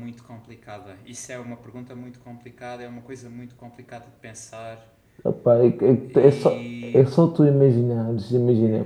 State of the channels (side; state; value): both; identical; correlation 1.00